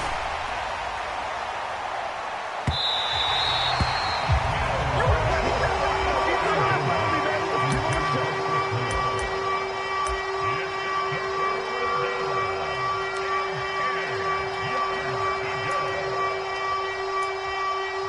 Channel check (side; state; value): both; identical; correlation 1.00